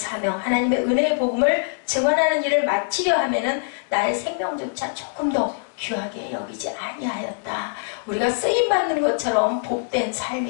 하나님의 은혜의 복음을 증언하는 일을 마치려 하면은 나의 생명조차 조금 더 귀하게 여기지 아니하였다. 우리가 쓰임받는 것처럼 복된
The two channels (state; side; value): silent; right; 63 dB below the other